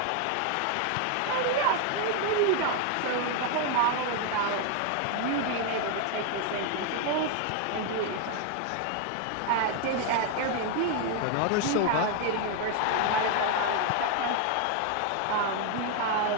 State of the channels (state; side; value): different; both; correlation 0.01